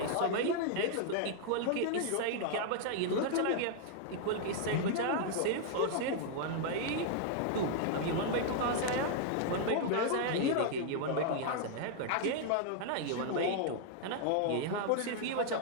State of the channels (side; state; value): both; different; correlation 0.00